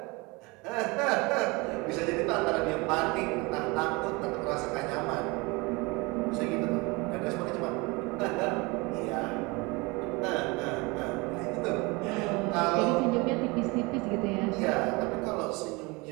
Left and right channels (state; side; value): quieter; left; 25.7 dB